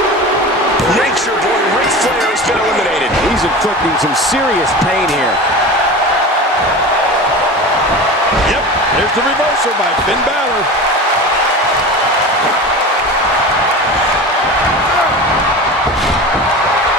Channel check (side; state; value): both; normal; correlation 0.31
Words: Nature Boy Ric Flair has been eliminated. He's inflicting some serious pain here. Yep, there's the reversal by Finn Balor.